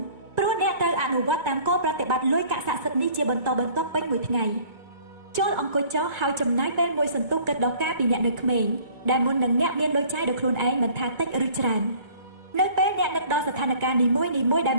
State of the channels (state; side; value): late; left; 2.1 ms